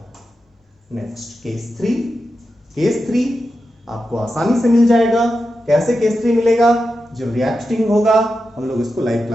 Next case 3। केस 3 आपको आसानी से मिल जाएगा। कैसे केस 3 मिलेगा? जब रिएक्टिंग होगा, हम लोग इसको लाइव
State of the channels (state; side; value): normal; both; correlation 0.90